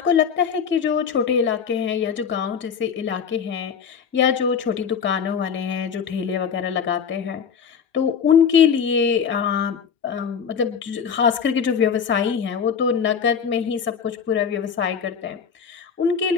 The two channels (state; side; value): quieter; right; 6.9 dB